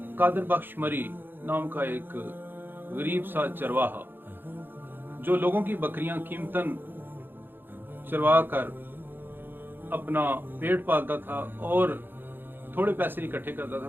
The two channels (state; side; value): late; left; 0.097 ms